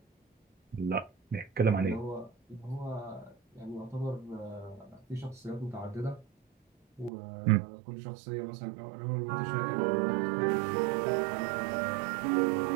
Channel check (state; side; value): drops out; left; at 7.1 s